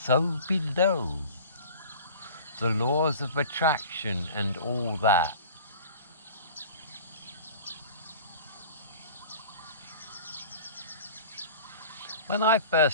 below. The laws of attraction and all that. When I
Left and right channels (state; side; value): inverted; both; correlation -0.41